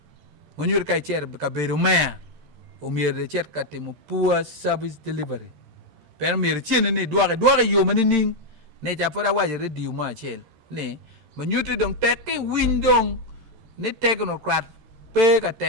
mo nyur kai cher ka beru me o mier de cher ka timo poor service delivery per mier chen ni doare yo mani ning ne ja pora waje redio ma chel ne mo nyuti dong teke windong ni technocrat pe ka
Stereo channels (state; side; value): late; left; 13 ms